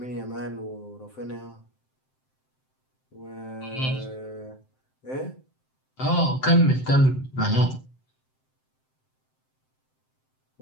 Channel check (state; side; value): late; right; 7.7 ms